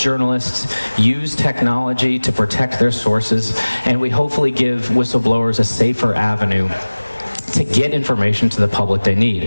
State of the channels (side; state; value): both; inverted; correlation -1.00